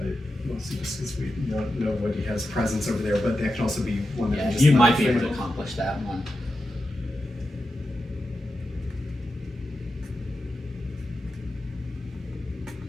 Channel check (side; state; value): both; normal; correlation 0.90